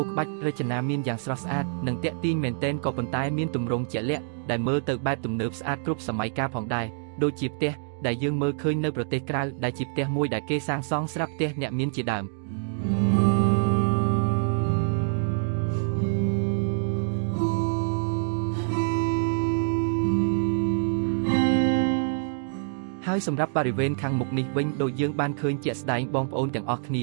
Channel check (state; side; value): silent; left; digital silence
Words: ក្បាច់រចនាមានយ៉ាងស្រស់ស្អាតនិងទាក់ទាញមែនទែនក៏ប៉ុន្តែមានទម្រង់ជាក់លាក់ដែលមើលទៅបែបទំនើបស្អាតគ្រប់សម័យកាលផងដែរដូចជាផ្ទះដែលយើងមើលឃើញនៅប្រទេសក្រៅដែលជាផ្ទះមួយដែលគេសាងសង់ស្រាប់ផ្ទះអ្នកមានជាដើមហើយសម្រាប់បរិវេណខាងមុខនេះវិញដូចយើងបានឃើញជាក់ស្ដែងបងប្អូនទាំងអស់គ្ន